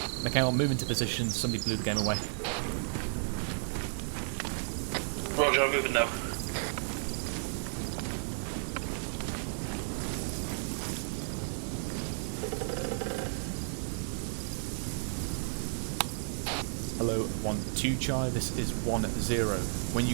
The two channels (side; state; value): left; silent; 56 dB below the other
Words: Mikhail, move into position. Somebody blew the game away. Roger, I'm moving now. Hello, 1-2 Charlie, this is 1-0. When